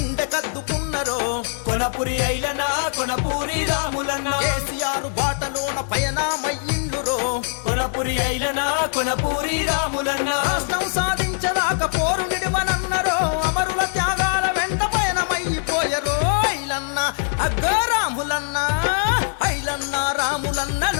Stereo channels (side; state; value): right; silent; digital silence